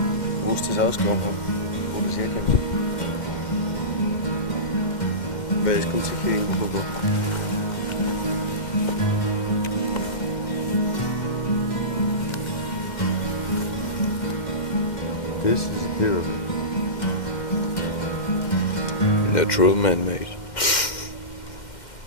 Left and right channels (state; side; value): late; right; 2.1 ms